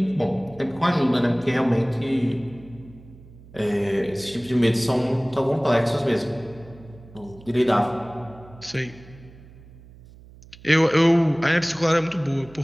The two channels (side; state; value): right; noise; hum, 21 dB below the sound